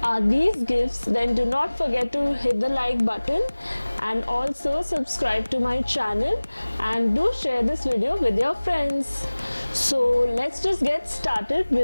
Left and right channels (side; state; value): both; inverted; correlation -1.00